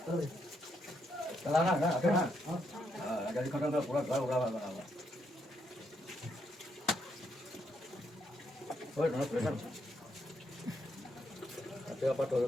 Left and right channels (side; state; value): both; normal; correlation 0.77